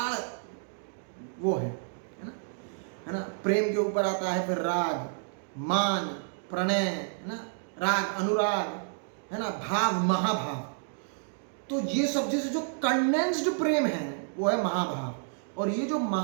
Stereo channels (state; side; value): silent; left; digital silence